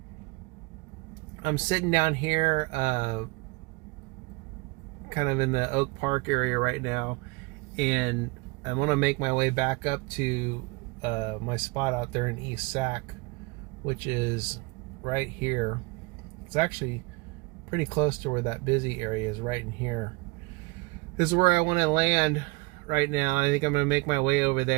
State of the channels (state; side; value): quieter; left; 26.5 dB